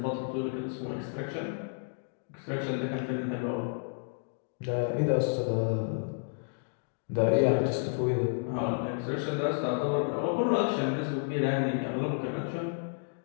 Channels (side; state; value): right; silent; digital silence